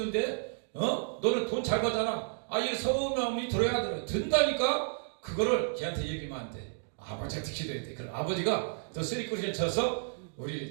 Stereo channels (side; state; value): left; silent; digital silence